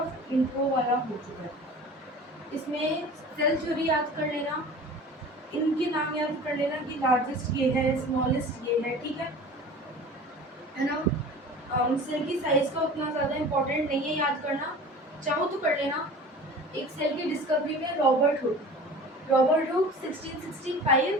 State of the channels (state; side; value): normal; both; correlation 0.40